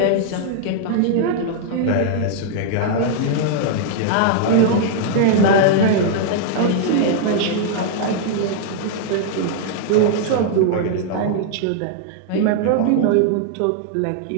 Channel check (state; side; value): different; both; correlation -0.01